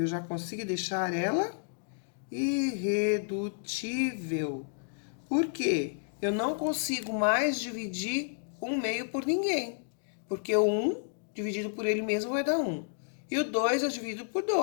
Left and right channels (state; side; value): silent; right; digital silence